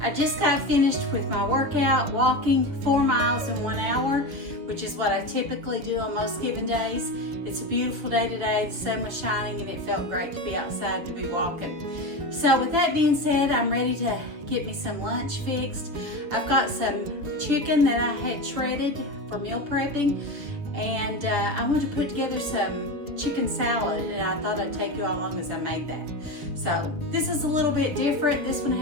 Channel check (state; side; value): late; left; 7.1 ms